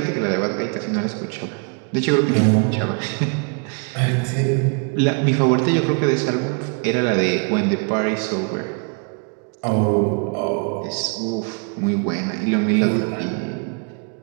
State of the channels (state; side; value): quieter; left; 38.1 dB